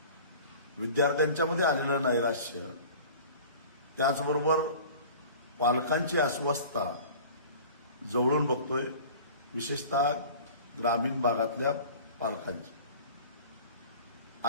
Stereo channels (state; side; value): inverted; both; correlation -0.42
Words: विद्यार्थ्यांच्यामध्ये आलेलं नैराश्य, त्याचबरोबर पालकांची अस्वस्थता जवळून बघतोय, विशेषतः ग्रामीण भागातल्या पालकांची.